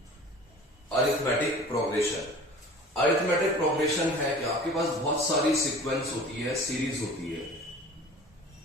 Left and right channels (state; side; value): normal; both; correlation 0.42